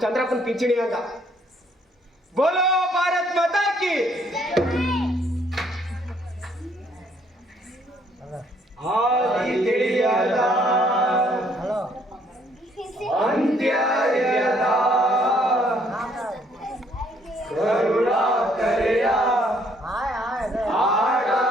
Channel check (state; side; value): normal; both; correlation 0.66